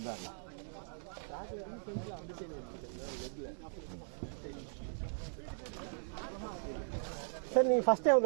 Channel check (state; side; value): silent; left; digital silence